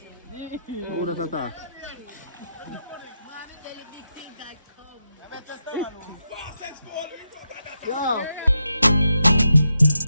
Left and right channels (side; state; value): both; inverted; correlation -0.86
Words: Who does that? Yeah.